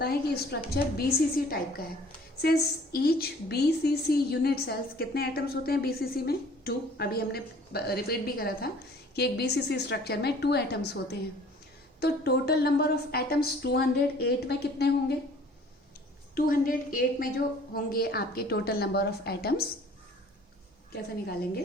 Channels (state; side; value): normal; both; correlation 0.52